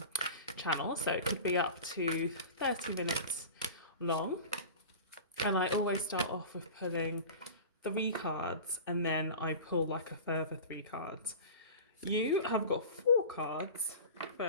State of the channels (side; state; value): both; inverted; correlation -0.34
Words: channel. So, it could be up to 30 minutes long, and I always start off with pulling 3 cards and then I pull like a further 3 cards. You have got 4 cards